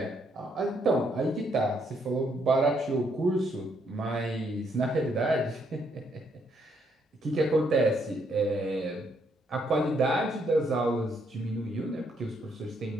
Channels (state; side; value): normal; both; correlation 0.73